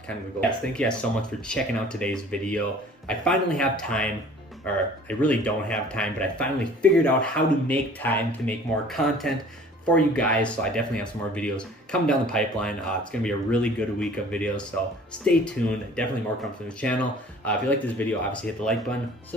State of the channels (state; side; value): normal; both; correlation 0.49